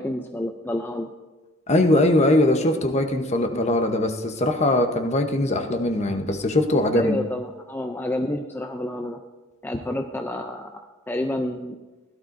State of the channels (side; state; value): both; normal; correlation 0.54